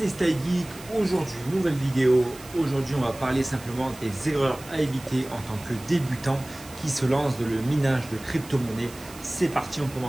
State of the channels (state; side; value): noise; right; hiss, 18 dB below the sound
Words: StyleGeek. Aujourd'hui, nouvelle vidéo. Aujourd'hui, on va parler simplement des erreurs à éviter en tant que débutant qui se lance dans le minage de crypto-monnaies. C'est parti, on